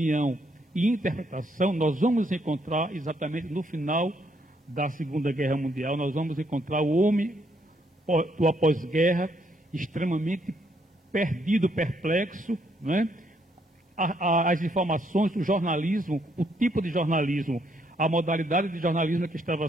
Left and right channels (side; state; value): both; normal; correlation 0.72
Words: e interpretação. Nós vamos encontrar exatamente no final da Segunda Guerra Mundial, nós vamos encontrar o homem do após-guerra extremamente perdido, perplexo, né? As informações, o jornalismo, o tipo de jornalismo, a modalidade de jornalismo que estava